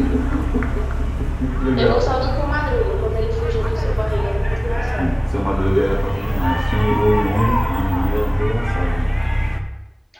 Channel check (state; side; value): identical; both; correlation 1.00